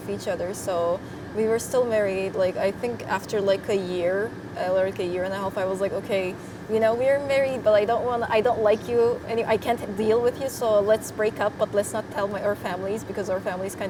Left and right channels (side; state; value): both; identical; correlation 1.00